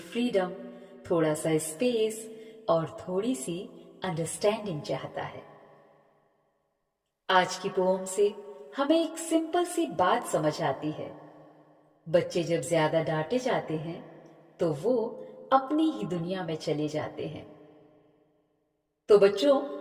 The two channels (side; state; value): both; identical; correlation 1.00